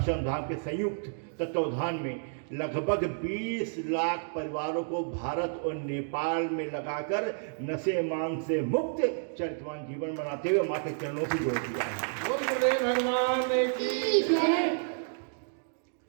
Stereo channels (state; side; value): silent; left; digital silence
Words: धाम के संयुक्त तत्वावधान में लगभग 20 लाख परिवारों को भारत और नेपाल में लगाकर नशे मान से मुक्त चरितवान जीवन बनाते हुए माँ के चरणों की जोड़ दिया है। बोल गुरुदेव भगवान की जय।